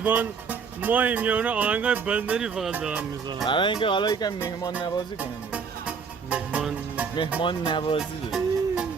مایم یا اون آهنگای بندری فقط دارم میزنم. برای اینکه حالا یکم مهمان نوازی کنیم. مهمان نوازی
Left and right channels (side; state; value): left; quieter; 5.8 dB